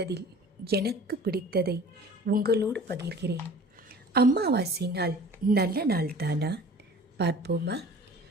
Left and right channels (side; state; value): both; normal; correlation 0.45